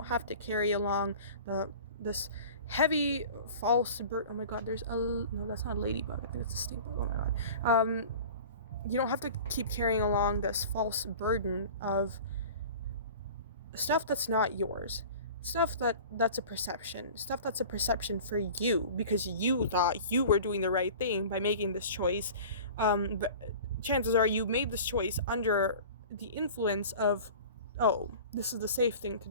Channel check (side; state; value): both; inverted; correlation -0.40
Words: have to carry along this heavy false oh my god, no, that's not a ladybug, I think it's a stink bug. Oh my god. You don't have to keep carrying along this false burden of stuff that's not yours, stuff that's a perception for you, because you thought you were doing the right thing by making this choice. But chances are you made this choice under the influence of, oh, this is the safe thing to